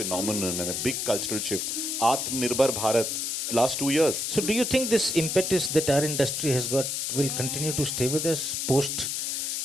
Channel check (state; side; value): noise; left; hiss, 1 dB below the sound